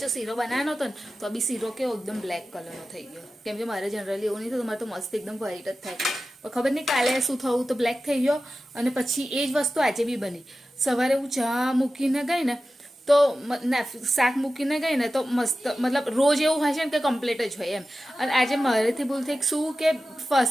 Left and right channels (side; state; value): both; normal; correlation 0.94